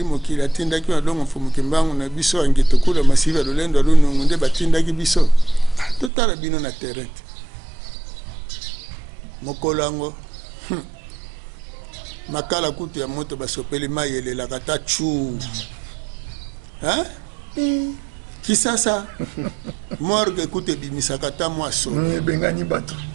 mokili atindaki madongo mfumuki mbangu na biso ange tokula masivi ya lolendo alunungu nde batindaki biso totala bino na terrain mokolo yango makala kutu ya moto basopeli mai elelaka ta chu kisasa morgue kutu ebimisaka ta mwaso ebengani bato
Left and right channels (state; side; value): drops out; left; at 6.1 s